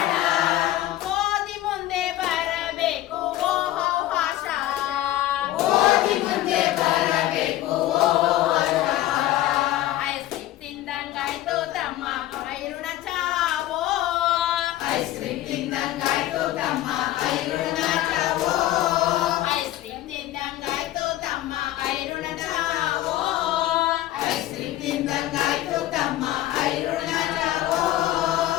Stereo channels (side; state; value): right; quieter; 14.6 dB